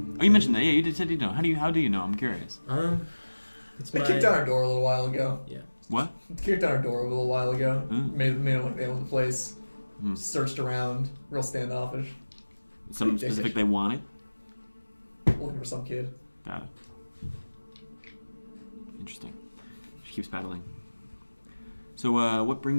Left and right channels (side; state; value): both; inverted; correlation -1.00